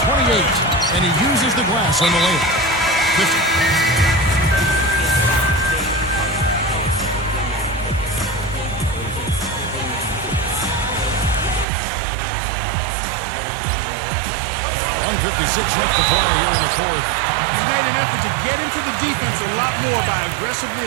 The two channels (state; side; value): drops out; left; at 11.7 s